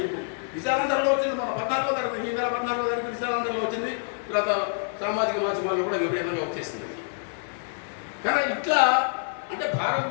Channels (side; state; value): right; silent; 59 dB below the other